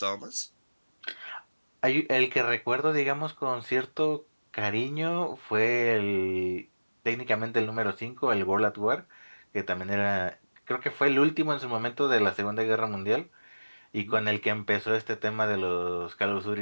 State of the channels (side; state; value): both; inverted; correlation -1.00